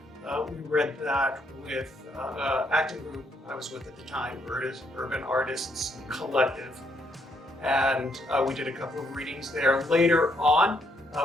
We read that with acting group I was with at the time, Urban Artists Collective, and we did a couple of readings there. Later on,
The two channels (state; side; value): normal; both; correlation 0.73